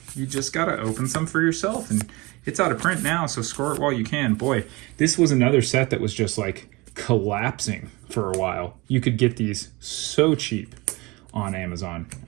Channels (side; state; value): left; quieter; 23.8 dB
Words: You just got to open some for yourself. And it's out of print now, so score it while you can. Boy, this was another set that was just like collapsing for a while. You could get these so cheap. on Amazon.